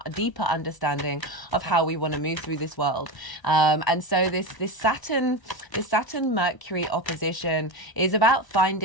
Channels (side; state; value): right; late; 1.0 ms